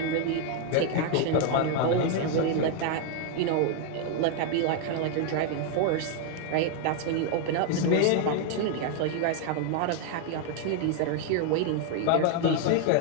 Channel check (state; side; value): different; both; correlation 0.00